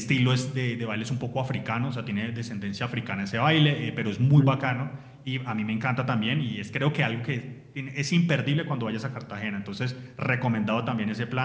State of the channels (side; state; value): both; identical; correlation 1.00